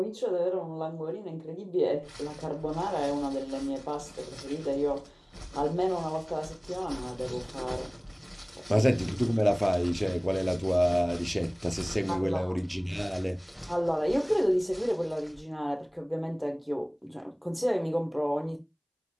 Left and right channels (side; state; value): both; identical; correlation 1.00